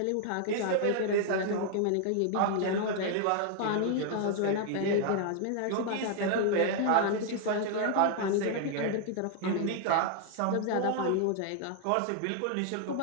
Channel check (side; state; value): both; different; correlation 0.00